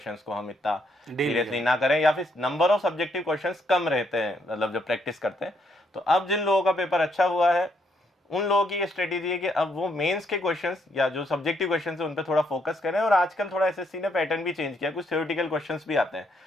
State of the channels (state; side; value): normal; both; correlation 0.73